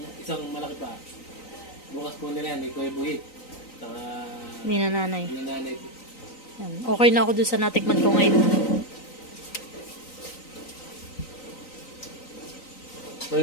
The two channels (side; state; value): right; late; 3.9 ms